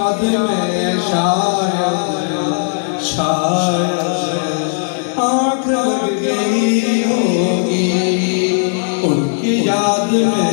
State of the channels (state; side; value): silent; right; 63 dB below the other